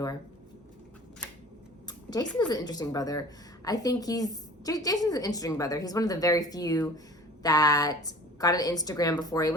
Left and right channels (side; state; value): both; normal; correlation 0.44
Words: Jason is an interesting brother. I think Jason's an interesting brother. He's one of the very few that got an Instagram before he